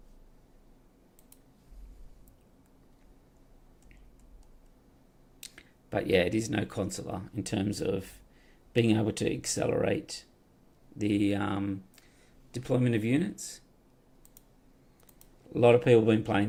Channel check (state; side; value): identical; both; correlation 1.00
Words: But yeah, it is no consular in terms of being able to accelerate the deployment of units. A lot of people have been